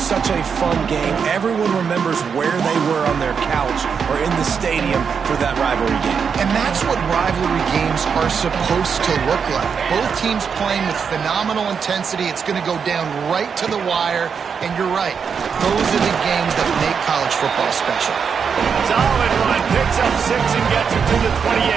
a fun game. Everyone remembers where they were on their couch or in the stadium for that rivalry game. And that's what rivalry games are supposed to look like. Both teams playing with phenomenal intensity. It's going to go down right to the wire. And you're right, those are the games that make college football special. Solid run, picks up 6 and gets it to the 28.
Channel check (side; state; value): left; quieter; 6.4 dB